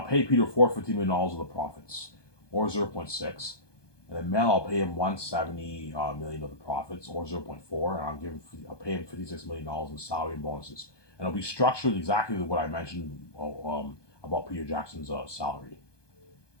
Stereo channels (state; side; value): late; right; 1.2 ms